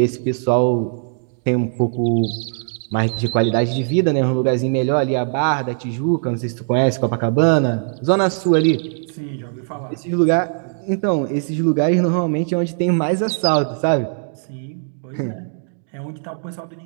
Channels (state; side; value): silent; left; digital silence